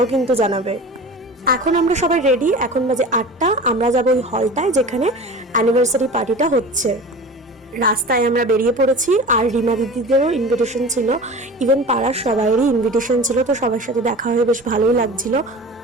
কিন্তু জানাবে। এখন আমরা সবাই রেডি, এখন বাজে 8টা। আমরা যাবো ওই হলটায় যেখানে অ্যানিভার্সারি পার্টিটা হচ্ছে। রাস্তায় আমরা বেরিয়ে পড়েছি, আর রিমা দিদিদেরও ইনভিটেশন ছিল, ইভেন পাড়ার সবাইয়েরই ইনভিটেশন ছিল। তো সবার সাথে দেখা হয়ে বেশ ভালোই লাগছিল।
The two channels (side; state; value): both; normal; correlation 0.36